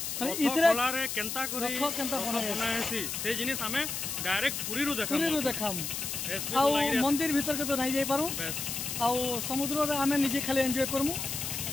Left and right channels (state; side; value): noise; left; hiss, 4 dB below the sound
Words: माने इतरे रे केनता करी रथ केनता बनाएसी से जिनिस आमे डायरेक्ट पूरी रो देखाम एसबी बलांगिर मंदिर भीतर के तो नहीं जाई पारू बस आ समुद्र रे आमे निजे खाली एन्जॉय करमु